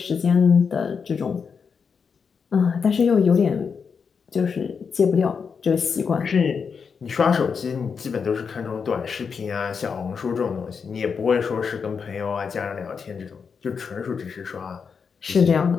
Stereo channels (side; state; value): right; quieter; 6.0 dB